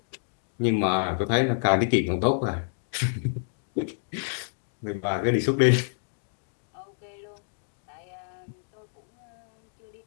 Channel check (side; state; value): right; silent; digital silence